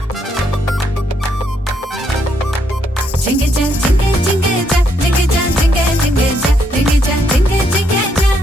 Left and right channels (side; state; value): both; normal; correlation 0.74